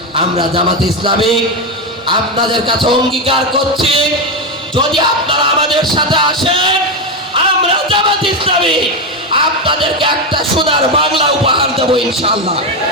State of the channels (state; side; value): normal; both; correlation 0.10